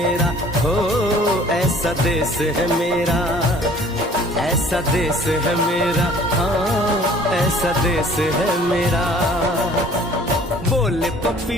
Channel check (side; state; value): both; normal; correlation 0.52